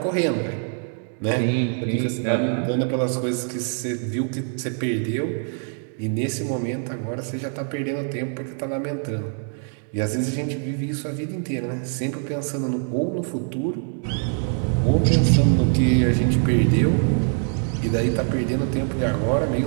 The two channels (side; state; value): left; silent; 57 dB below the other